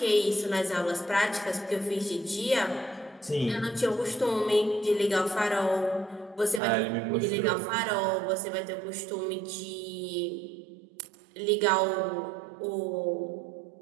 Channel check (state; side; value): drops out; left; at 6.6 s